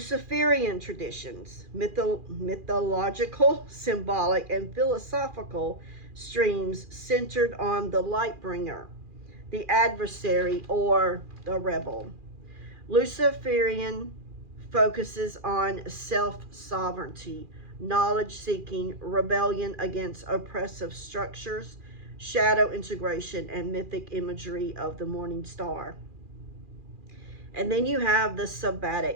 traditions, mythological, symbolic, and philosophical streams centered on the light bringer, the adversary, or the rebel. Luciferian focuses on self-sovereignty, knowledge-seeking, rebellion against oppressive structures, shadow integration, and mythic imagery of the morning star. And then you have the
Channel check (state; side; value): late; left; 2.4 ms